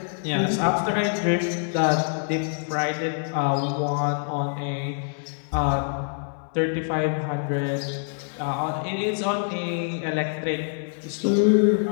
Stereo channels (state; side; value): silent; right; digital silence